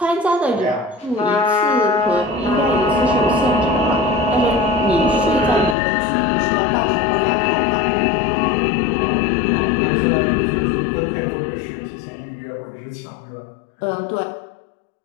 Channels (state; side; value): drops out; right; at 5.8 s